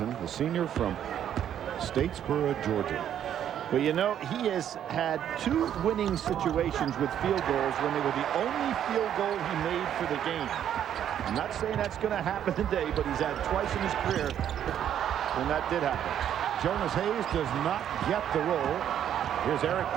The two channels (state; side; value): quieter; left; 10.0 dB